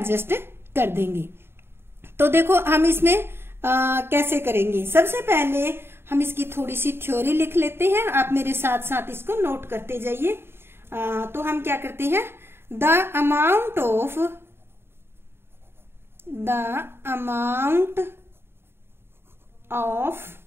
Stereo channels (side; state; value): left; late; 0.11 ms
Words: कर देंगे। तो देखो हम इसमें कैसे करेंगे। सबसे पहले हम इसकी थोड़ी सी थ्योरी लिख लेते हैं, आप मेरे साथ साथ इसको नोट करते जाइए। तो हम क्या करते हैं, the amount of